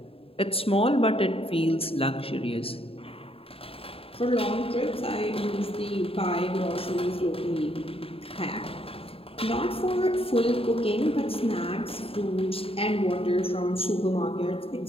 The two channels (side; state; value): right; late; 0.27 ms